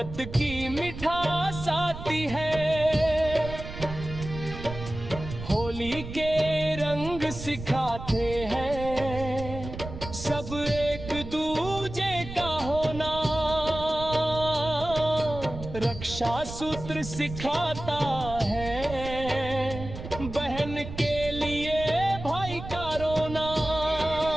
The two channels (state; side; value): noise; right; rumble, 10 dB below the sound